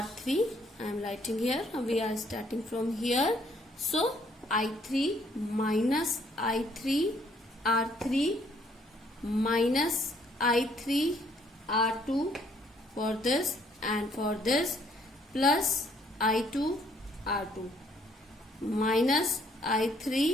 I am writing here. We are starting from here. So I3 minus I3 R3 minus I3 R2 for this and for this plus I2 R2 minus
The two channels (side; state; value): both; normal; correlation 0.66